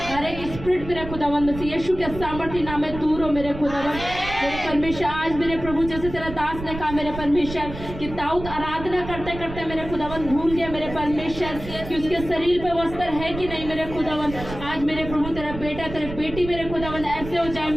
एक स्पिरिट मेरे खुदावन मसीह यीशु के सामर्थ्य नाम में दूर हो मेरे खुदावन। मेरे परमेश्वर आज मेरे प्रभु जैसे तेरा दास ने कहा मेरे परमेश्वर कि दाऊद आराधना करते करते मेरे खुदावन भूल गया मेरे परमेश्वर कि उसके शरीर पे वस्त्र है कि नहीं मेरे खुदावन। आज मेरे प्रभु तेरा बेटा, तेरे बेटी मेरे खुदावन ऐसे हो जाए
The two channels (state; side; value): noise; right; rumble, 10 dB below the sound